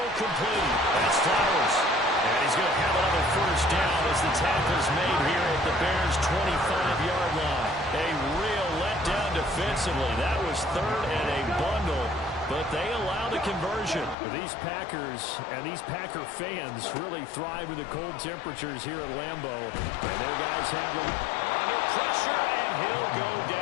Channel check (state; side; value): drops out; right; at 14.2 s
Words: complete. That's Flowers. And he's going to have another 1st down as the tackle's made here at the Bears' 25-yard line. A real letdown defensively. That was 3rd and a bundle, but they allow the conversion. These Packers and these Packer fans really thrive in the cold temperatures here at Lambeau. And their guys have them under pressure, and he'll go